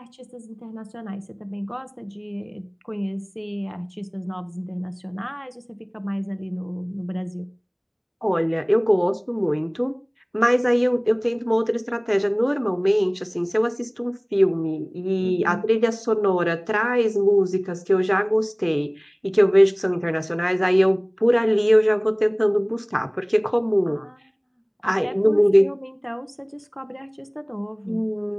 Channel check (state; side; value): identical; both; correlation 1.00